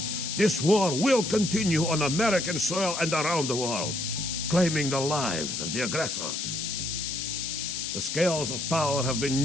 this war will continue on American soil and around the world, claiming the lives of the aggressors. The scales of power have been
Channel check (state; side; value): noise; left; hiss, 3 dB below the sound